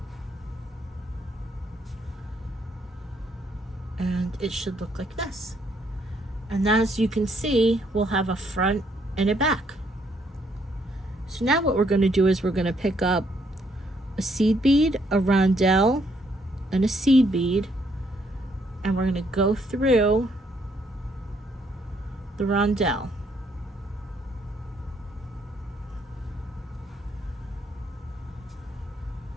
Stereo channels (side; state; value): both; normal; correlation 0.70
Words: And it should look like this. And as you can see, we'll have a front and a back. So now what we're going to do is we're going to pick up a seed bead, a rondelle, and a seed bead, and we're going to go through the rondelle.